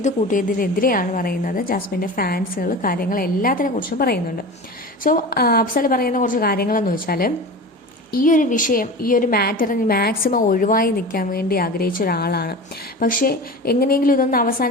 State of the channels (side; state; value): both; normal; correlation 0.32